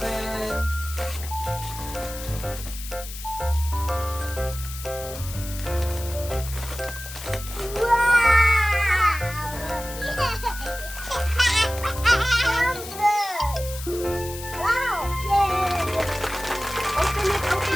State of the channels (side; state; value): left; noise; hiss, 11 dB below the sound